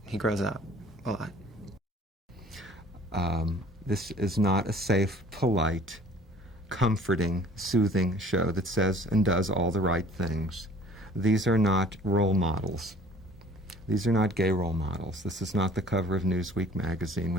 He grows up a lot. This is not a safe, polite, comforting, soothing show that says and does all the right things. These are not role models. These are not gay role models. This is not the cover of Newsweek magazine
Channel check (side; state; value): both; normal; correlation 0.51